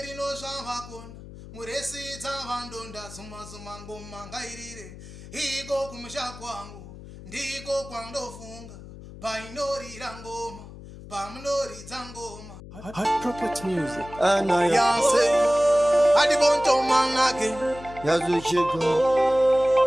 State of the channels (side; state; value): left; noise; hum, 15 dB below the sound